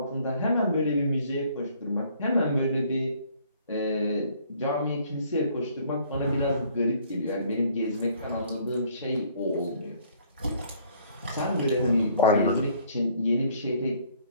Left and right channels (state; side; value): inverted; both; correlation -0.59